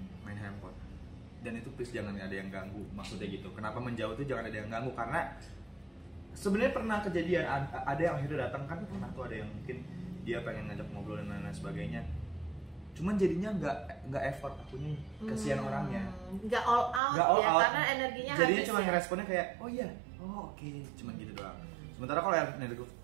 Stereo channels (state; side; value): drops out; left; at 17.0 s